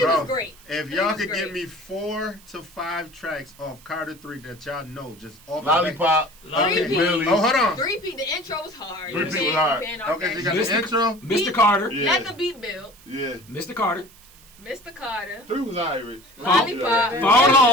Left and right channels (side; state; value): right; noise; hiss, 24 dB below the sound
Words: was great. If Three y'all was could great. give me 4 to 5 tracks off Carter 3 that y'all know, just off Lollipop, Okay. Millie. Oh, hold on. 3P, the intro was hard. 3P You was hard. can't off Okay, so that you got shit. the intro. Mr. Carter. Yeah. Let the beat build. Yeah. Mr. Carter. Mr. Carter. 3 was Irish. Lollipop. Phone